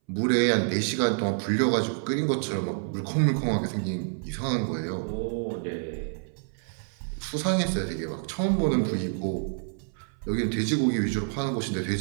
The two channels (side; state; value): left; silent; 60 dB below the other